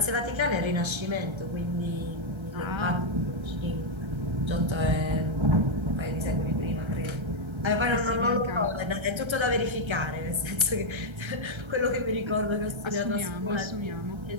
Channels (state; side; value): late; left; 1.3 ms